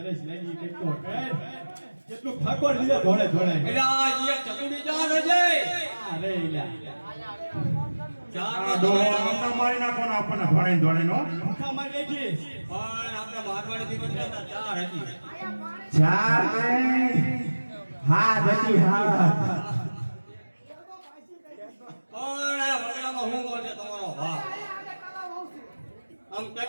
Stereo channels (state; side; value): inverted; both; correlation -1.00